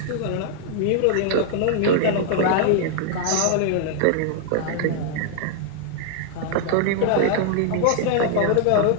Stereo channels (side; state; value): both; different; correlation 0.00